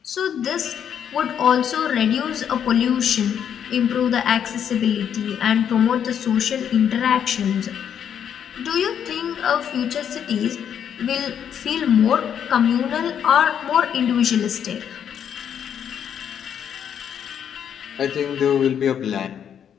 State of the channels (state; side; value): quieter; right; 8.7 dB